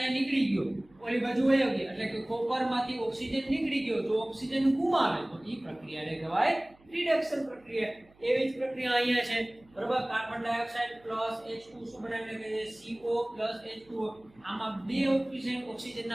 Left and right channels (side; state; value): right; noise; hum, 30 dB below the sound